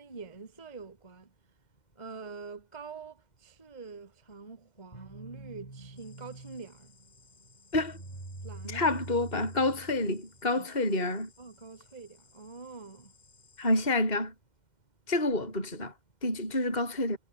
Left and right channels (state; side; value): late; right; 2.1 ms